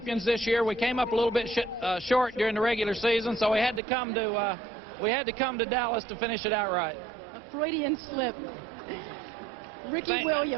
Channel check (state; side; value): drops out; left; at 3.8 s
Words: this year. We came up a little bit short during the regular season, so we had to come to Dallas to finish it out right. A Freudian slip. Ricky